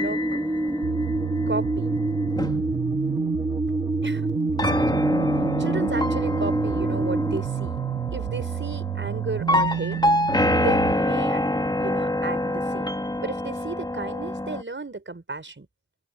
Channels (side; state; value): both; normal; correlation 0.61